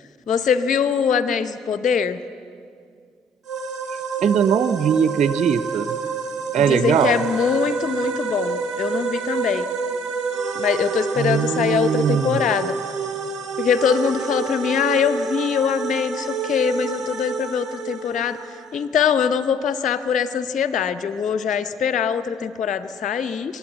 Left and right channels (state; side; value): normal; both; correlation 0.57